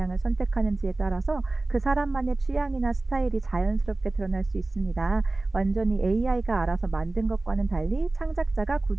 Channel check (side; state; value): left; quieter; 3.1 dB